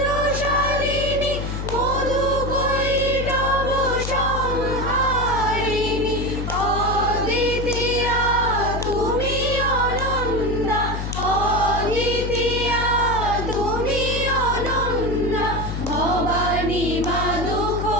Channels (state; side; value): noise; left; hum, 4 dB below the sound